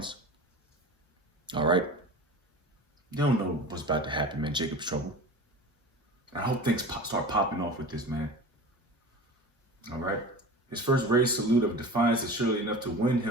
All right? They don't know what's about to happen, man. Jacob's trouble. I hope things start popping off with this, man. All right? His first raised salute of defiance is surely enough to win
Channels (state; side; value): normal; both; correlation 0.34